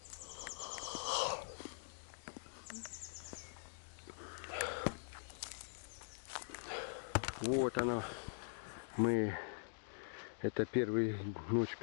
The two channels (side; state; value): right; silent; digital silence